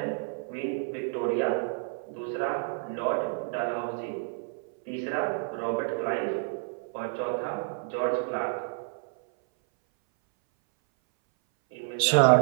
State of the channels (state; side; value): silent; left; 58 dB below the other